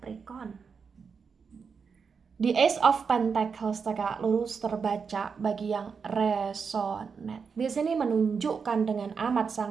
Di Ace of Pentacles tegak lurus terbaca bagi yang resonate. Di sini menunjukkan dengan amat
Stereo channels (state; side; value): quieter; left; 5.7 dB